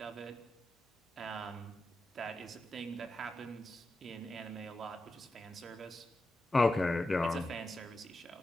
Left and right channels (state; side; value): normal; both; correlation 0.90